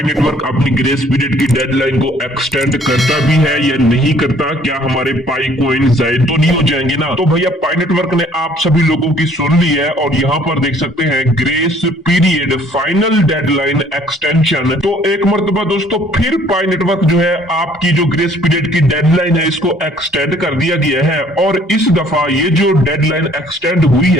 नेटवर्क अपनी ग्रेस पीरियड की डेडलाइन को एक्सटेंड करता भी है या नहीं करता, क्या हमारे पाई कोइन जाए तो नहीं हो जाएंगे ना। तो भैया पाई नेटवर्क ने आप सभी लोगों की सुन ली है और यहाँ पर देख सकते हैं grace period final deadline extension. तो एक मरतबा दोस्तों फिर पाई नेटवर्क जो है आपकी जो ग्रेस पीरियड की डेडलाइन है इसको एक्सटेंड कर दिया गया है और इस दफा ये जो डेडलाइन एक्सटेंड हुई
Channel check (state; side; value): normal; both; correlation 0.59